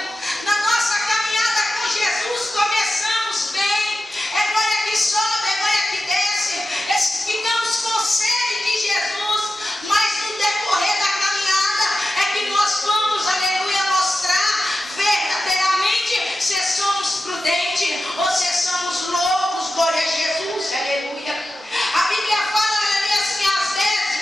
Na nossa caminhada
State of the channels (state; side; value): normal; both; correlation 0.92